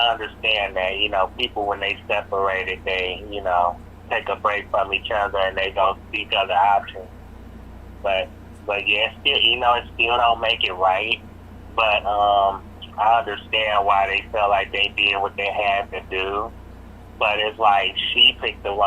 understand that, you know, people when they separated, they, you know, take a break from each other and they don't seek other options. But yeah, still, you know, it still don't make it right. But I understand why they felt like they did what they had to do. But it's like she picked the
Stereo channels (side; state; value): both; identical; correlation 1.00